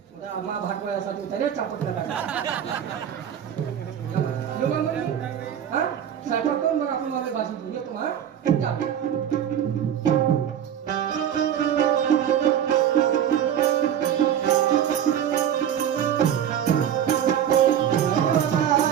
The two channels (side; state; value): left; quieter; 9.6 dB